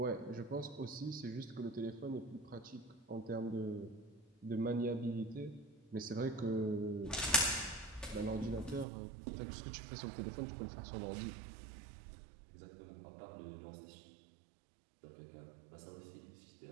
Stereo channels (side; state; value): left; drops out; at 8.8 s